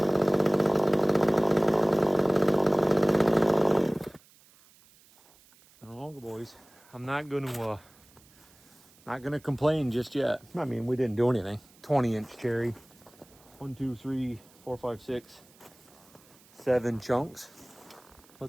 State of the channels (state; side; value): noise; right; hiss, 28 dB below the sound